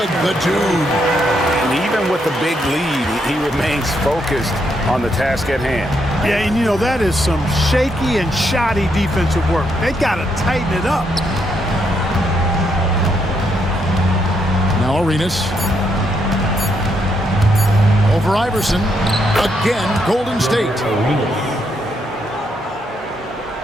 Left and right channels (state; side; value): normal; both; correlation 0.77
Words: The dude. And even with the big lead, he remains focused on the task at hand. Yeah, and you know, that is some shaky and shoddy defensive work. They got to tighten it up. Now Arenas. Over Iverson. Again, Golden State.